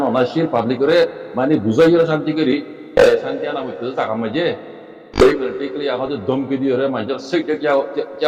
অনাশীল পাবলিকরে মানে বুঝাইও শান্তি করি শান্তি আনা হইতে টাকা মাঝে এই মেলটি কলি আমাদের দমকি দিওরে মাঝে সেক দেখে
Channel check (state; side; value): identical; both; correlation 1.00